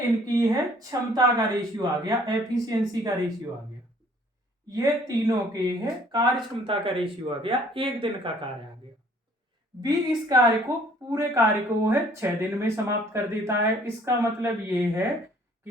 है क्षमता का रेशियो आ गया, एफिशिएंसी का रेशियो आ गया। ये तीनों के है कार्य क्षमता का रेशियो आ गया, एक दिन का कार्य आ गया। बी इस कार्य को पूरे कार्य को है 6 दिन में समाप्त कर देता है। इसका मतलब ये है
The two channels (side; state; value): both; normal; correlation 0.58